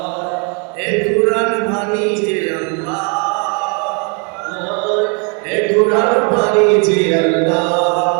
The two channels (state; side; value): quieter; left; 37.2 dB